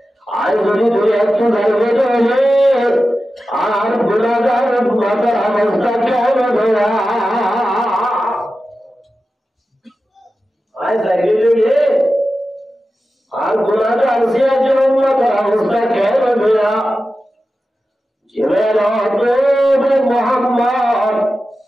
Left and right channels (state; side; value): normal; both; correlation 0.93